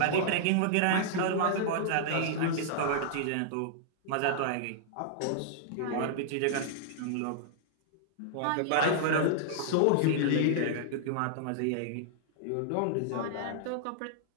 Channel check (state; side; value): different; both; correlation -0.01